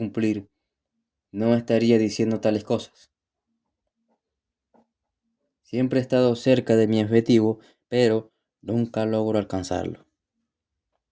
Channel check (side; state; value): both; identical; correlation 1.00